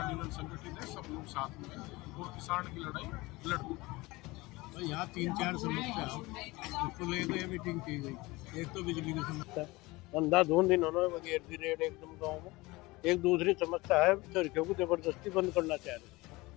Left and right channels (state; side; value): quieter; right; 21.8 dB